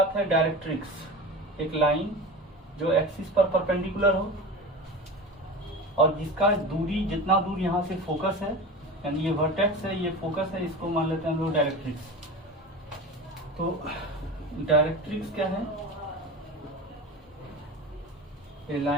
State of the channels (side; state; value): both; normal; correlation 0.30